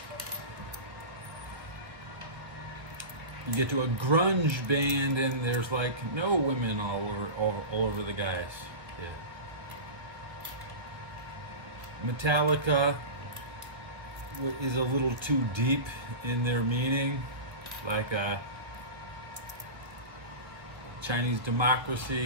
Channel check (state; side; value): late; left; 1.3 ms